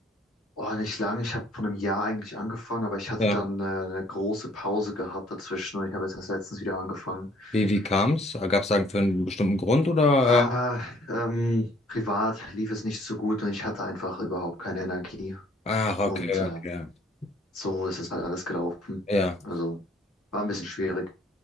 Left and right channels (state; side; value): normal; both; correlation 0.60